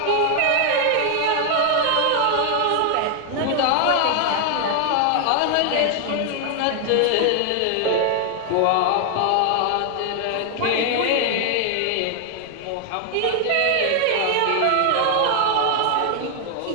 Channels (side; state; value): both; different; correlation 0.00